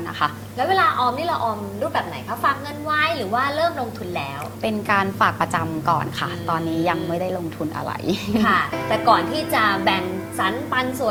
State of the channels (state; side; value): identical; both; correlation 1.00